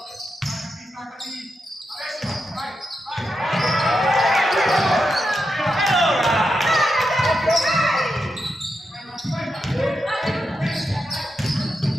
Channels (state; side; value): normal; both; correlation 0.86